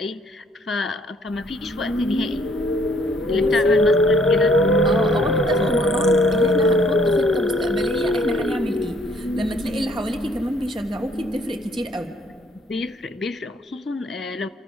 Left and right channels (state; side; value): normal; both; correlation 0.64